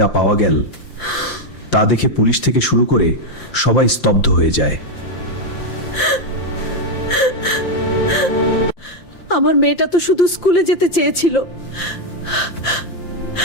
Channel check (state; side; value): late; right; 5.8 ms